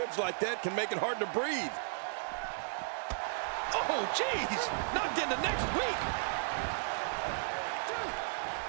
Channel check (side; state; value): left; silent; digital silence